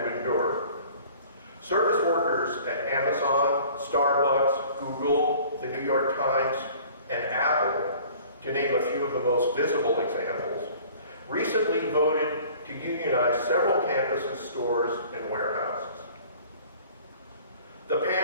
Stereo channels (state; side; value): inverted; both; correlation -0.49